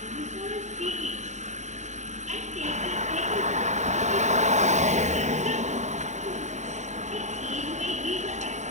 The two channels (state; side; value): late; left; 0.34 ms